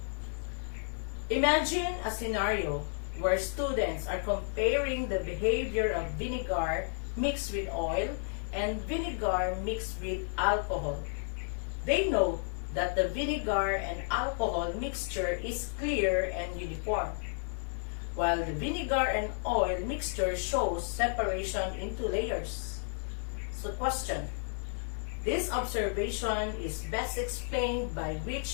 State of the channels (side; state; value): right; silent; 56 dB below the other